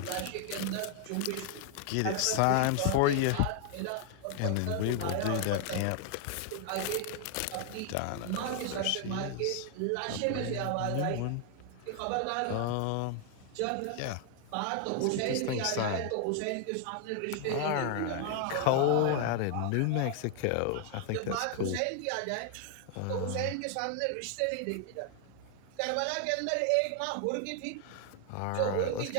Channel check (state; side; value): different; both; correlation 0.00